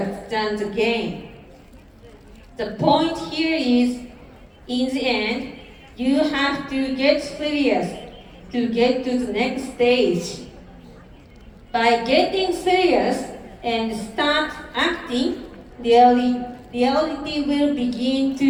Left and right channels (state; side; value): identical; both; correlation 1.00